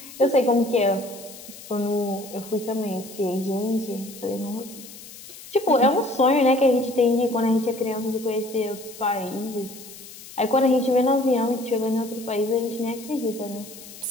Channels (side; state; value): left; noise; hiss, 16 dB below the sound